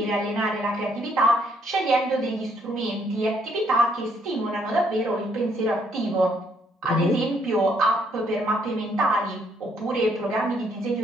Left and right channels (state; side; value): normal; both; correlation 0.70